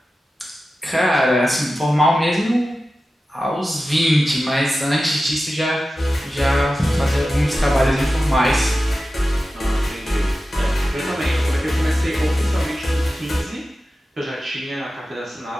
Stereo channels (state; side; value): normal; both; correlation 0.94